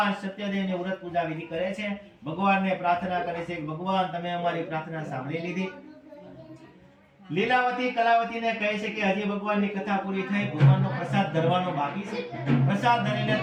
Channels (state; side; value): identical; both; correlation 1.00